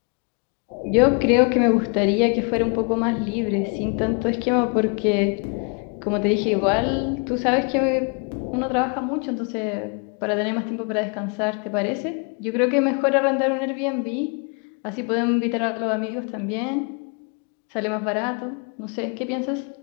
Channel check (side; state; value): right; quieter; 35.7 dB